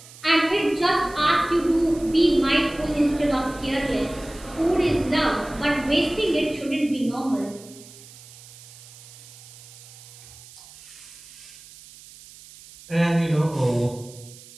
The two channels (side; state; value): right; noise; hiss, 20 dB below the sound